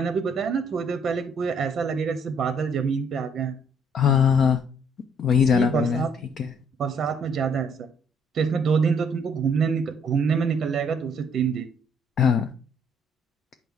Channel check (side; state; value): both; normal; correlation 0.64